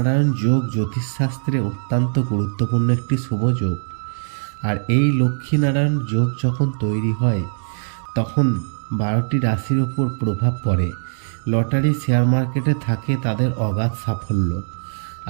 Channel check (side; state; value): left; silent; digital silence